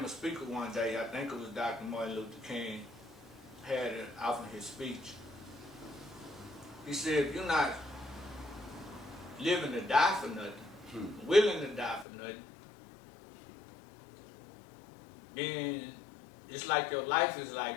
speaker one day, I think it was Dr. Martin Luther King, had it off in his speech. He said, if you're not living to die for nothing, willing to die for nothing, then it's like your life is like,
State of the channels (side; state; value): right; drops out; at 12.1 s